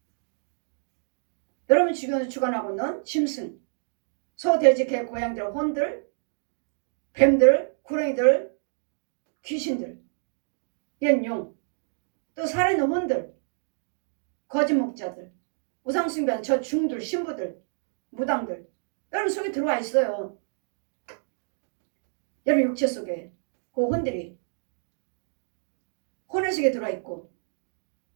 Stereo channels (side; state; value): left; silent; digital silence